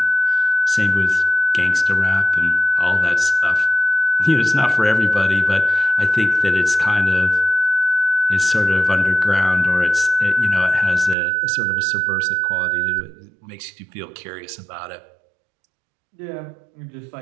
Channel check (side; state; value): left; drops out; at 11.2 s